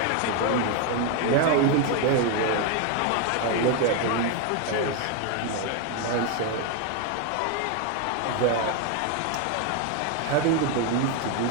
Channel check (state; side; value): different; both; correlation 0.01